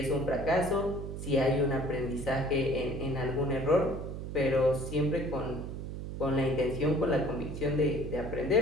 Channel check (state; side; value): noise; right; hum, 7 dB below the sound